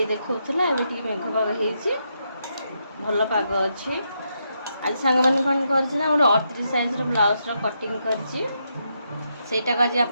देखा ए मेघ पाग हो भल पाग अच्छी। आज सांग मैंने कौन कर गोटे 38 साइज ब्लाउज कटिंग करटा आज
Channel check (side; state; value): both; inverted; correlation -0.81